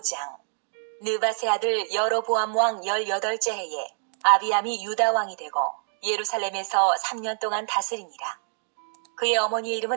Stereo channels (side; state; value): left; silent; digital silence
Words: 느밧의 아들 여로보암 왕 18째 해에 아비암이 유다 왕이 되고 예루살렘에서 3년 동안 다스리니라. 그의 어머니의